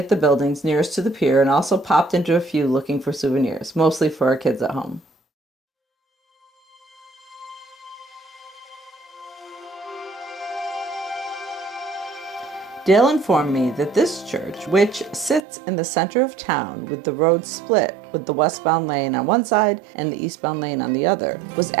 the buildings nearest to the pier and also popped into a few looking for souvenirs, mostly for our kids at home. Dale informed me that this church, which sits in the center of town with the road split with the westbound lane on one side and the eastbound lane on the other, was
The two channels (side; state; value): left; drops out; at 15.5 s